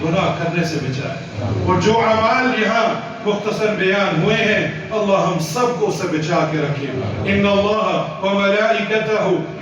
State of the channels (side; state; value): both; identical; correlation 1.00